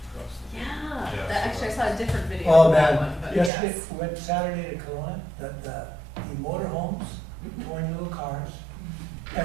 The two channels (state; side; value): drops out; left; at 3.5 s